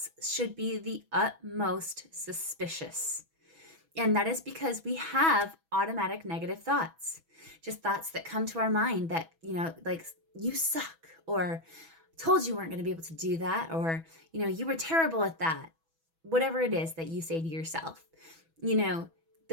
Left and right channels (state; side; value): late; left; 6.1 ms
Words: should be the utmost suspicious. And that is because we have automatic negative thoughts, just thoughts that come to our mind that, like, you suck, or told you weren't going to be able to do that, or, you were terrible at that. Whatever it is that you say to yourself,